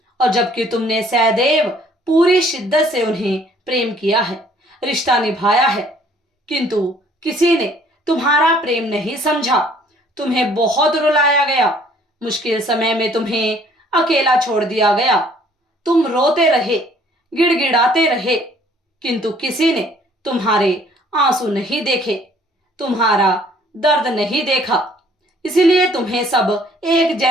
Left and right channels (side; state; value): both; normal; correlation 0.59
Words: और जबकि तुमने सदैव पूरी शिद्दत से उन्हें प्रेम किया है, रिश्ता निभाया है, किंतु किसी ने तुम्हारा प्रेम नहीं समझा। तुम्हें बहुत रुलाया गया, मुश्किल समय में तुम्हें अकेला छोड़ दिया गया। तुम रोते रहे, गिड़गिड़ाते रहे, किंतु किसी ने तुम्हारे आंसू नहीं देखे, तुम्हारा दर्द नहीं देखा। इसीलिए तुम्हें सब एक